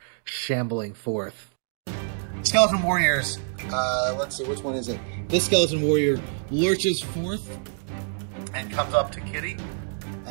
shambling forth. Skeleton warriors. Let's see, which one is it? This skeleton warrior lurches forth and comes up to Kitty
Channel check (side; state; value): left; silent; digital silence